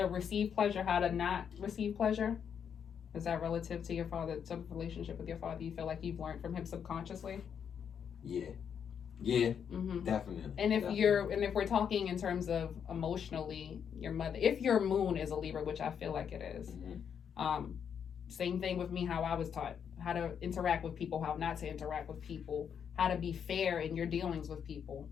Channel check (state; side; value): quieter; right; 7.7 dB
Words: receive pleasure, how to not receive pleasure. Is that relative to your father, to the relationship with your father? You feel like you've learned from him subconsciously? Yeah, definitely. And if we're talking in terms of emotionally, your mother, if your moon is a Libra, which I feel like it is, same thing with me, how I was taught how to interact with people, how not to interact with people, how to be fair in your dealings with people,